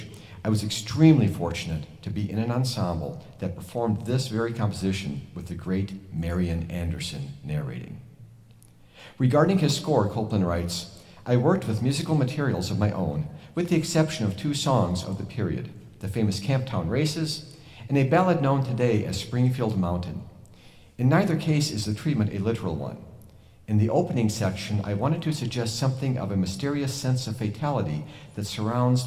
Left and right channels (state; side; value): identical; both; correlation 1.00